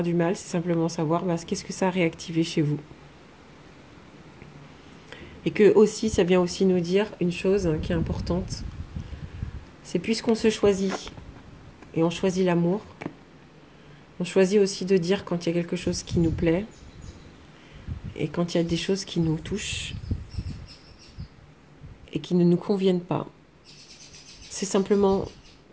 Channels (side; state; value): both; identical; correlation 1.00